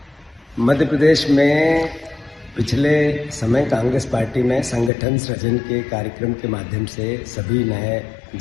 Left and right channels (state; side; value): drops out; right; at 4.9 s